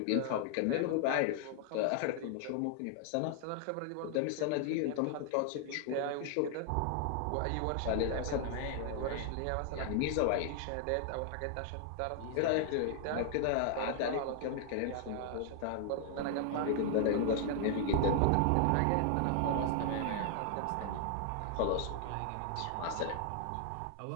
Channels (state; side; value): different; both; correlation 0.00